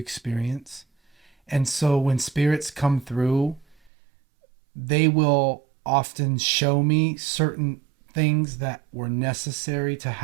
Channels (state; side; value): drops out; left; at 3.9 s